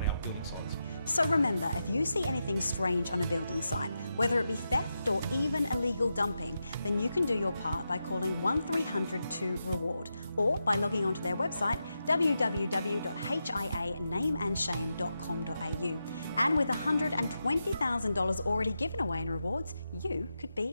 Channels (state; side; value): inverted; both; correlation -0.87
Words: our building sites. So remember, if you see anything strange on a building site, whether it be theft or even illegal dumping, then you can do your part by calling 1300 2REWARD or by logging onto their website www.hianameandshame.com.au. And with $120,000 already given away in rewards, you could